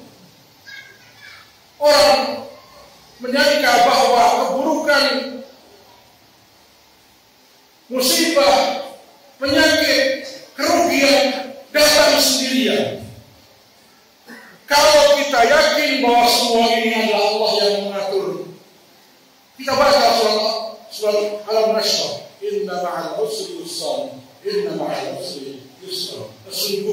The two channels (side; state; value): both; identical; correlation 1.00